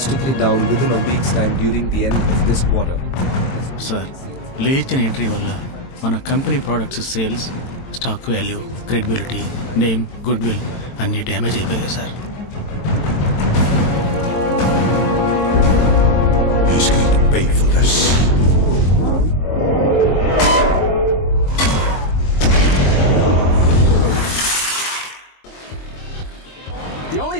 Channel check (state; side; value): late; right; 22 ms